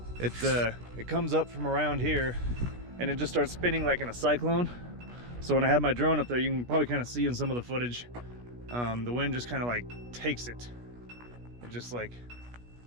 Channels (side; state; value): left; late; 17 ms